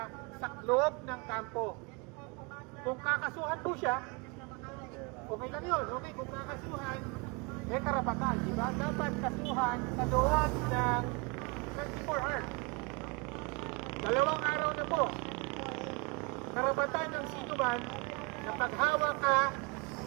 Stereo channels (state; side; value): quieter; left; 29.2 dB